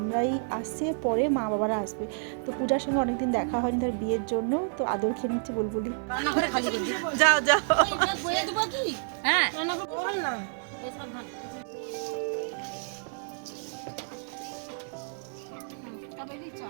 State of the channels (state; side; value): silent; left; digital silence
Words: আসছে, পরে মা বাবারা আসবে। তো পূজার সঙ্গে অনেকদিন দেখা হয়নি তার বিয়ের জন্য, তো আদর খেয়ে নিচ্ছে বুলবুলি। যাও যাও হ্যাঁ